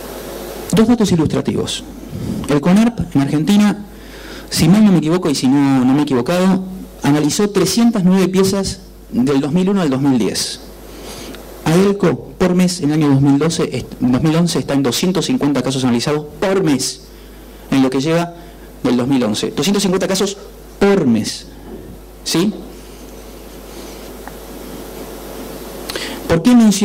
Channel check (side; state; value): both; identical; correlation 1.00